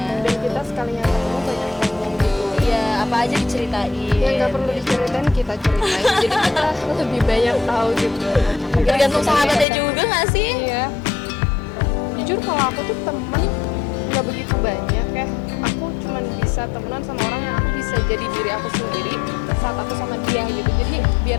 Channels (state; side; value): drops out; right; at 9.7 s